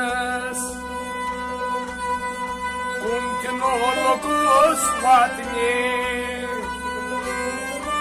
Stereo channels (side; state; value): both; identical; correlation 1.00